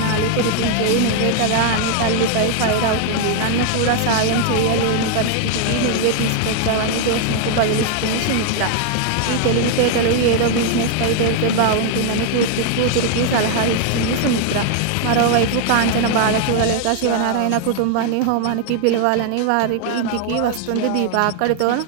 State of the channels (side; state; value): both; different; correlation 0.00